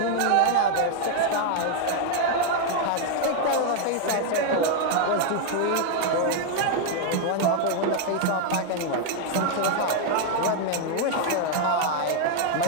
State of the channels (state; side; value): different; both; correlation 0.00